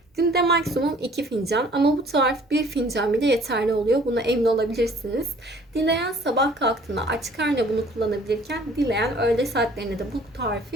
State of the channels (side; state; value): both; normal; correlation 0.55